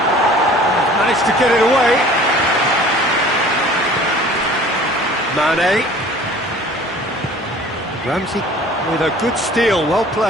Managed to get it away. Mane. Ramsey with a good steal, well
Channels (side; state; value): both; normal; correlation 0.48